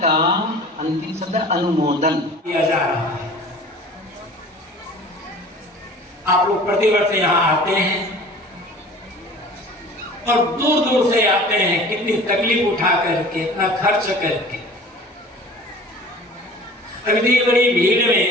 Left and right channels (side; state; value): both; normal; correlation 0.44